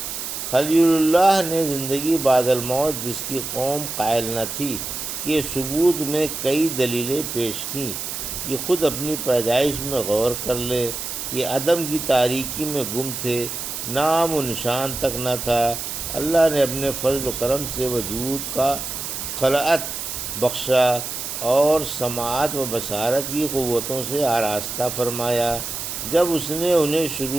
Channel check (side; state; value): right; noise; hiss, 6 dB below the sound